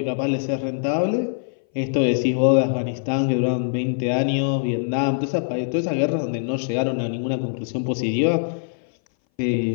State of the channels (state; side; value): silent; right; 59 dB below the other